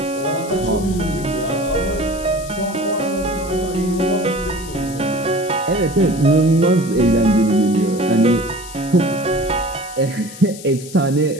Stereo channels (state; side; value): noise; left; hiss, 15 dB below the sound